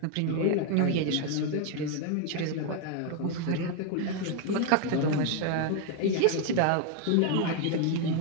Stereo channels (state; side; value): different; both; correlation 0.01